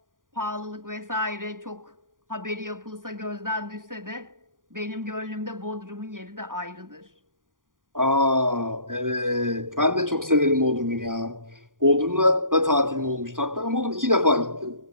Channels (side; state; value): left; late; 0.89 ms